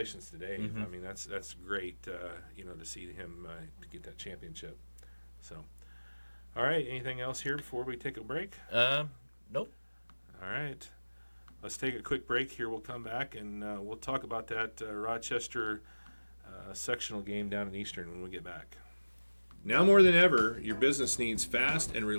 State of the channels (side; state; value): both; inverted; correlation -1.00